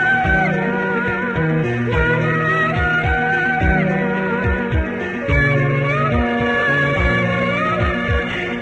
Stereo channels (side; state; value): both; identical; correlation 1.00